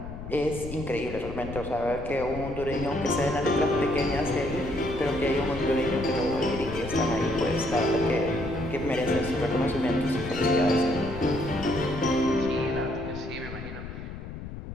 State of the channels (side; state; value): left; noise; rumble, 9 dB below the sound